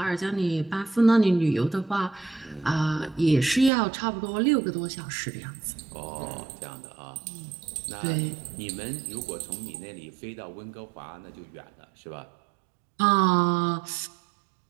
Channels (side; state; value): left; drops out; at 3.7 s